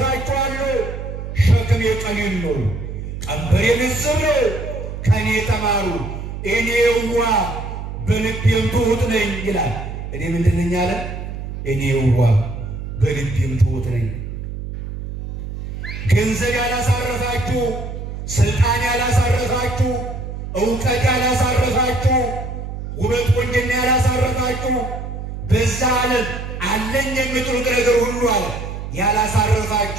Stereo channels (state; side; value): noise; right; hum, 7 dB below the sound